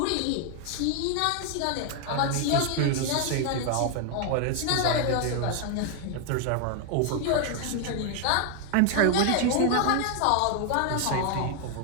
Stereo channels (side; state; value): both; different; correlation 0.00